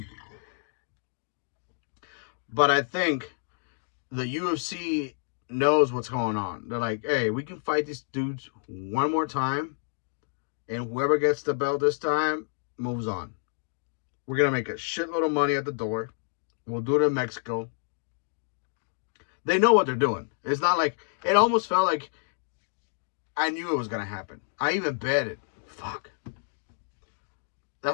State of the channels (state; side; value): silent; right; digital silence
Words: but I think the UFC knows what's going on. They're like, hey, we can fight these dudes one more time, and whoever gets the belt this time moves on. We're gonna make a shitload of money at the door. We'll do it in Mexico. They know what they're doing. It's not like, it almost felt like I knew it was gonna happen. I even bet it. Fuck.